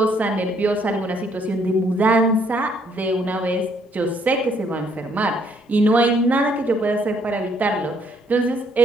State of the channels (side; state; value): both; normal; correlation 0.67